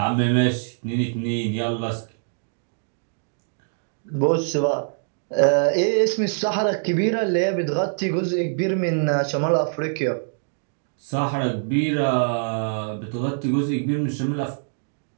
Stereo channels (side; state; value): left; silent; digital silence